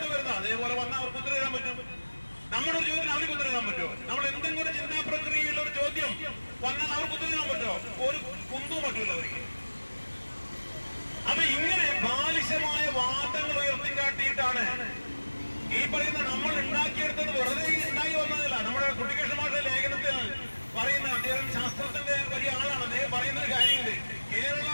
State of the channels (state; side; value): inverted; both; correlation -1.00